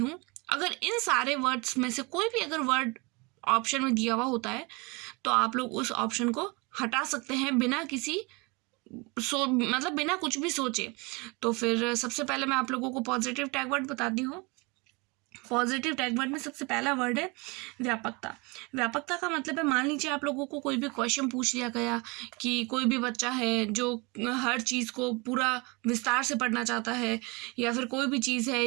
अगर इन सारे वर्ड्स में से कोई भी अगर वर्ड ऑप्शन में दिया हुआ होता है तो आप लोग उस ऑप्शन को हटा सकते हैं बिना किसी मतलब बिना कुछ भी सोचे। तो फिर सबसे पहले मैं आप लोगों को पॉजिटिव टैग वर्ड बताती हूँ। पॉजिटिव टैग वर्ड में सबसे पहला वर्ड है व्यापकता। व्यापकता का मतलब है, मान लीजिए आप लोगों को कोई भी क्वेश्चन पूछ लिया गया कि कोई भी बच्चा है जो हर चीज़ को पूरा विस्तार से पढ़ना चाहता है, या फिर कोई भी चीज़ है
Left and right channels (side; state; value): left; quieter; 27.2 dB